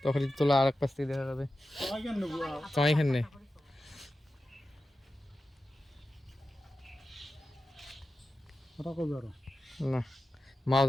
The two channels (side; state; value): both; normal; correlation 0.92